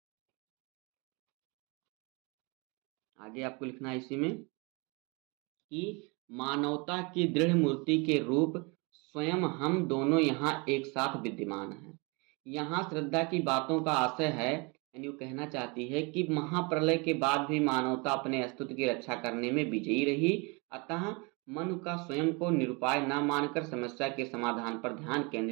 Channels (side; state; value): left; quieter; 29.5 dB